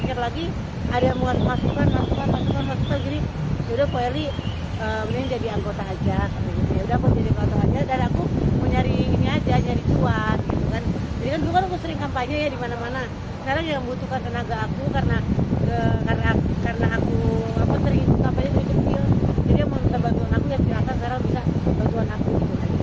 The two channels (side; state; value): both; identical; correlation 1.00